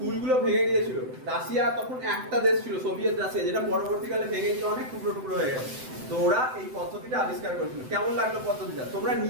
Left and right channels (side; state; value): left; late; 7.8 ms